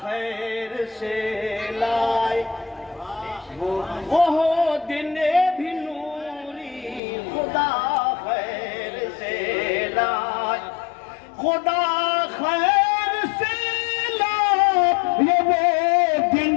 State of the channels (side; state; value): right; drops out; at 7.0 s